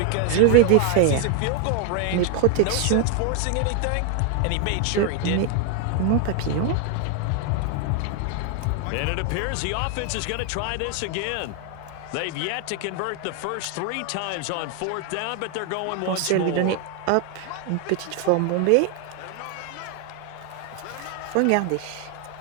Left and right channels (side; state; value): both; different; correlation 0.01